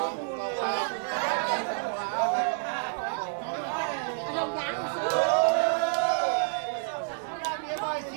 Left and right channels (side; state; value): left; silent; digital silence